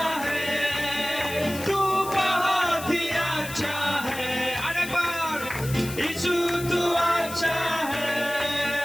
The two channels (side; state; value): left; noise; hiss, 12 dB below the sound